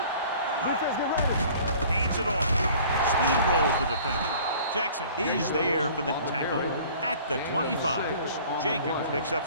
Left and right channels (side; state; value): both; inverted; correlation -0.49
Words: Defense, get ready. Hands it off. Steamrolls the defender. Jackson is there for the tackle at the 25. Jacobs picks up